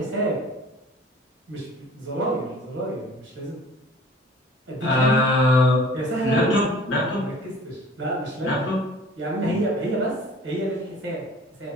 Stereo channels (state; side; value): normal; both; correlation 0.48